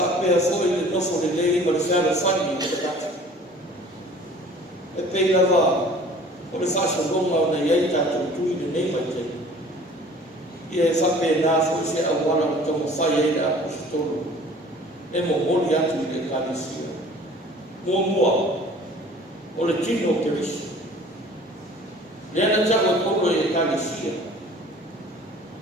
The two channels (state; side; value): normal; both; correlation 0.48